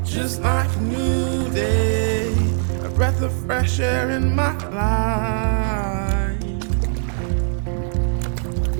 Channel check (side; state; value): left; silent; digital silence